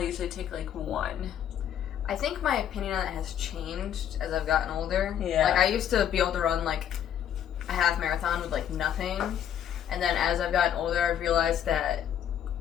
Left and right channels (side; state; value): right; quieter; 9.7 dB